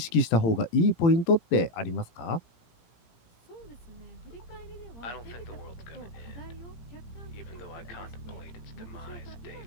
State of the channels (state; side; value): late; right; 18 ms